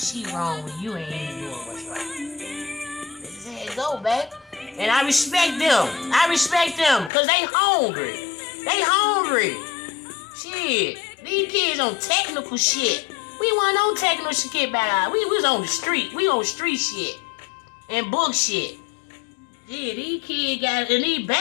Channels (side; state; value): right; drops out; at 7.1 s